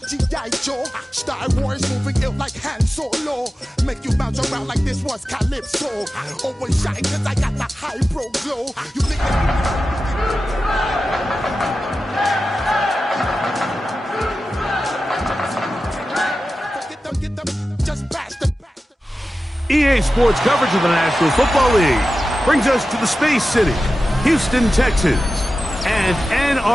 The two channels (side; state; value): both; normal; correlation 0.93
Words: G.I. Joe. Star Wars moving ill like Han Solo. Make you bounce around like this was Calypso. Always shine cause I got the high pro glow. You think get them, just pass them. EA Sports coverage of the National Football League brings us to the Space City, Houston, Texas, and